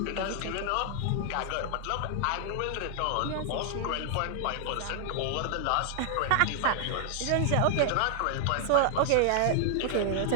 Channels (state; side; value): different; both; correlation 0.00